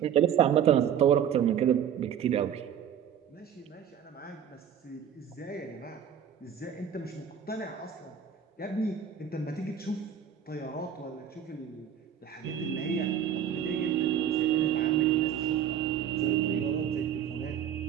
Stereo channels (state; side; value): quieter; left; 8.8 dB